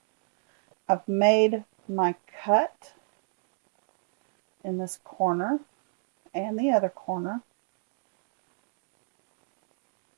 I've made my cut in this corner and the other corner.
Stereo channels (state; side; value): silent; left; digital silence